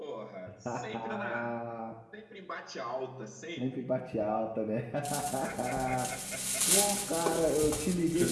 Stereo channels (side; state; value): both; identical; correlation 1.00